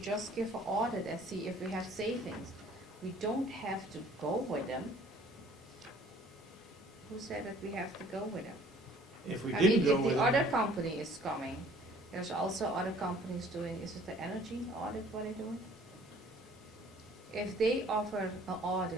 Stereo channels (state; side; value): normal; both; correlation 0.54